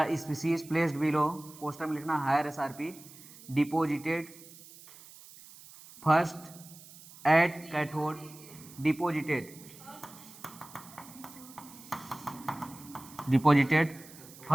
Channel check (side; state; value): right; noise; hiss, 19 dB below the sound